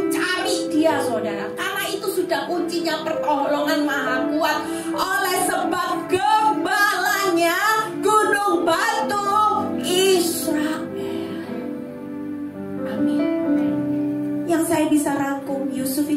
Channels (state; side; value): identical; both; correlation 1.00